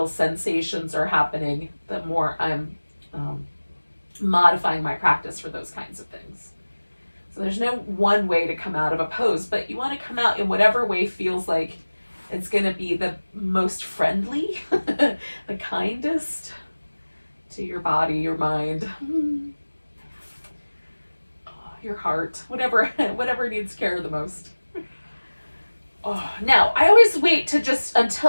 sensations are happening, the more I'm modifying my practice for those kinds of things. So there's no one way to come out of a pose, but you want to come out in whatever way feels like it's going to be the most friendly, the kindest to your body, your mind, your heart, whatever needs care the most. Oh, now, I always wait to just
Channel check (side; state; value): both; inverted; correlation -1.00